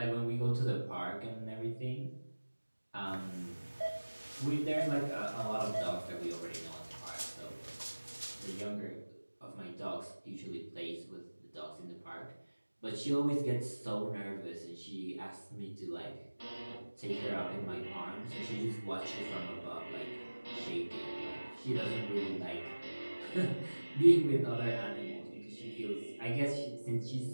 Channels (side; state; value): both; inverted; correlation -1.00